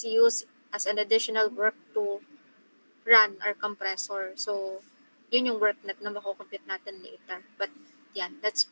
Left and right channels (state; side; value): inverted; both; correlation -1.00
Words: used as an additional work to run our compressor. So yun yung work net na makukompute natin later. But yan, let's